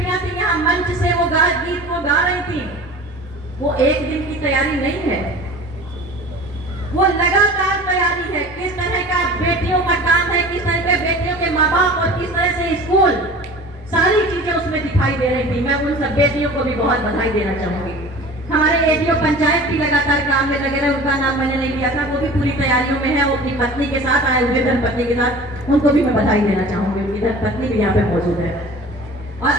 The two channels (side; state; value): both; normal; correlation 0.41